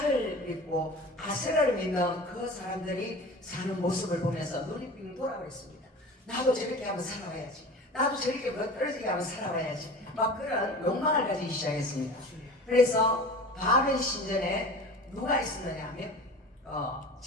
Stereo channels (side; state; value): both; normal; correlation 0.37